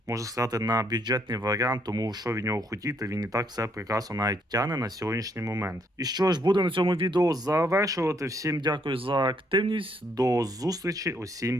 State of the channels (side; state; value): both; normal; correlation 0.71